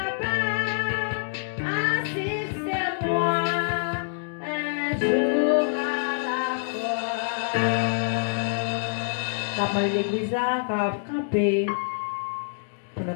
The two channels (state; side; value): silent; right; digital silence